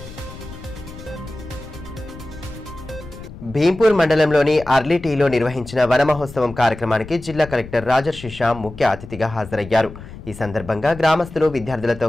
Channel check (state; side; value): noise; left; rumble, 15 dB below the sound